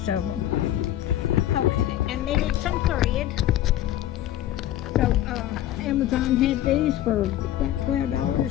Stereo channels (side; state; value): right; quieter; 12.9 dB